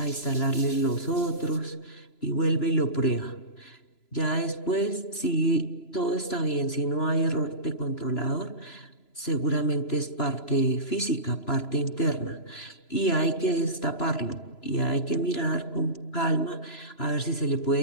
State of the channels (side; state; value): right; late; 3.0 ms